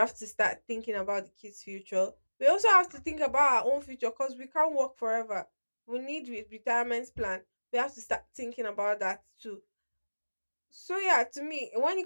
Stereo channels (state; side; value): inverted; both; correlation -1.00